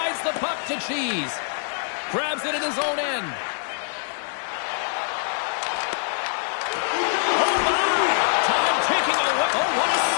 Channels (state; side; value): silent; right; digital silence